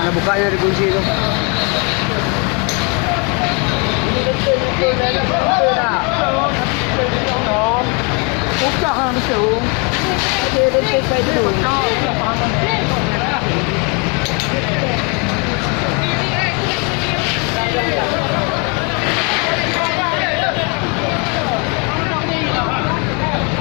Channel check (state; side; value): quieter; right; 33.2 dB